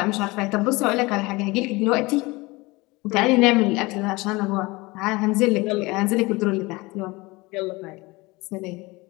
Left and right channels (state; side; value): quieter; right; 23.1 dB